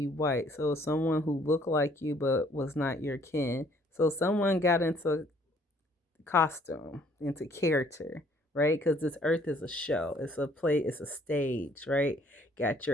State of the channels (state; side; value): normal; both; correlation 0.61